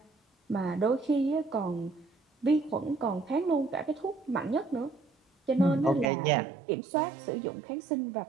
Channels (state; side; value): drops out; left; at 6.1 s